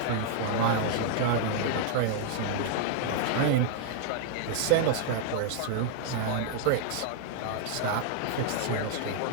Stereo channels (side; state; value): both; different; correlation 0.00